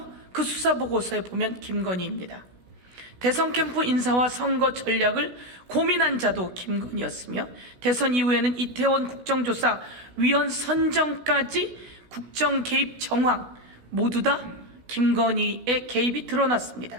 그 수사보고서에 보면 김건희입니다. 대선 캠프 인사와 선거 전략을 고민한 자도 김건희였으며 대선 이후에는 이태원 국정조사 위원 선정까지 국정 개입 정황 모두 다 김건희의 개입이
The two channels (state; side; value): late; left; 16 ms